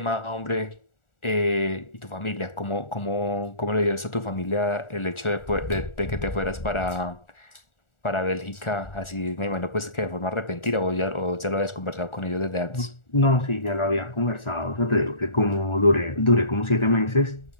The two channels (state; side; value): late; right; 1.4 ms